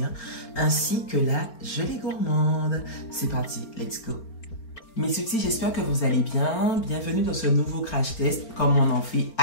ainsi que la gelée gourmande. C'est parti, let's go! Mes sweeties, j'espère que vous allez bien. Bienvenue dans ce nouveau crash test, comme on en fait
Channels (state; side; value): late; right; 4.4 ms